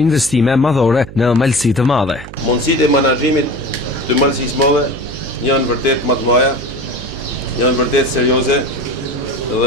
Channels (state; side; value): noise; right; hum, 14 dB below the sound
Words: investime madhore në Malësi të Madhe. Mundësitë e menaxhimit të Malësisë së Madhe janë vërtet më të mëdha, janë vërtet serioze